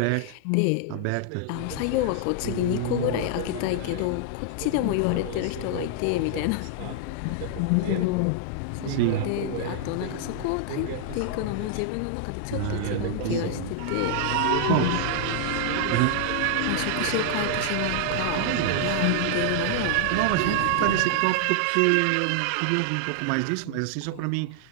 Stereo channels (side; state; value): both; different; correlation 0.00